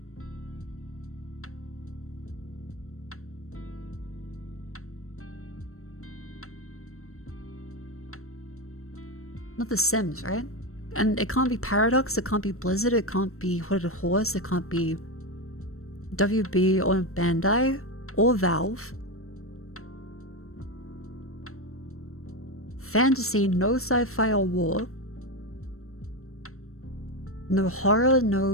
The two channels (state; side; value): late; right; 0.63 ms